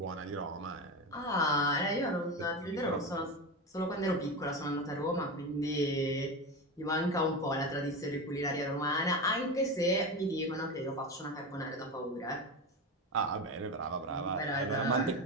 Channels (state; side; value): normal; both; correlation 0.21